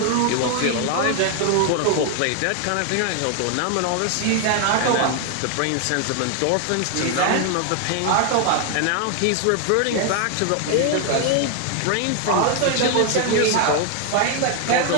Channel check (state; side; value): different; both; correlation 0.01